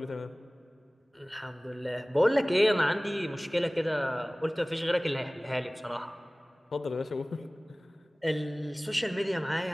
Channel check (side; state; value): both; normal; correlation 0.98